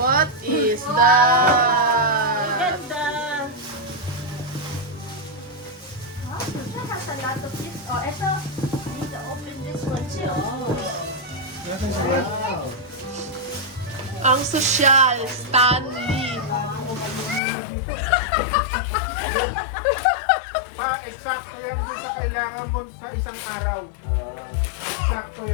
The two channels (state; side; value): drops out; right; at 17.4 s